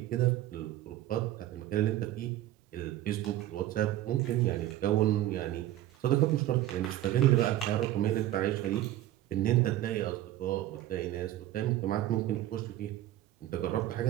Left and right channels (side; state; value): left; quieter; 13.9 dB